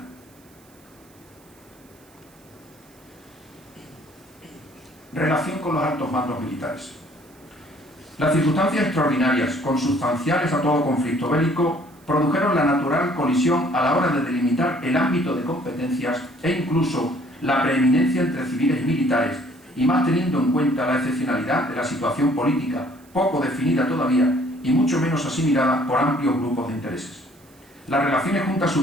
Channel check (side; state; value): right; noise; hiss, 29 dB below the sound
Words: Relación con los altos mandos militares. Las circunstancias extraordinarias, consustanciales a todo conflicto bélico, produjeron la natural colisión a la hora de delimitar el ámbito de competencias e incluso la preeminencia entre civiles y militares, y más teniendo en cuenta la excepcionalidad de la situación política, poco definida todavía y mucho menos asimilada por amplios grupos de intereses. Las relaciones Junta